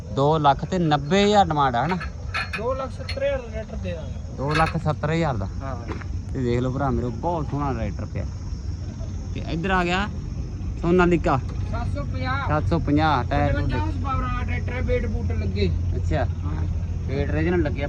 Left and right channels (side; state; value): both; identical; correlation 1.00